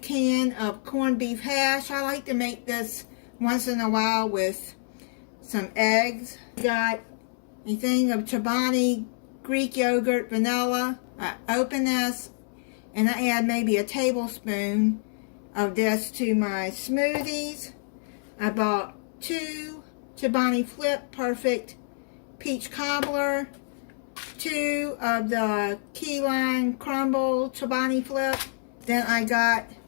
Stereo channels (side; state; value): right; silent; 60 dB below the other